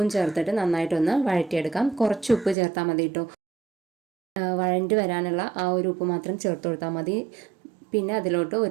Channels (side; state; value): left; drops out; at 2.6 s